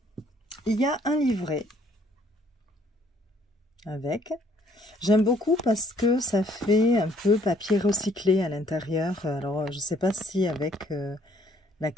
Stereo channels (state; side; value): normal; both; correlation 0.63